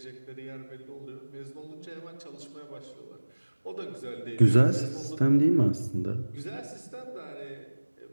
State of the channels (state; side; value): inverted; both; correlation -1.00